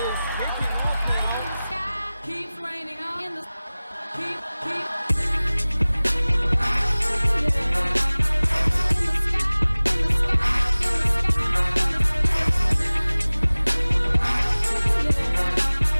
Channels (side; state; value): both; inverted; correlation -0.98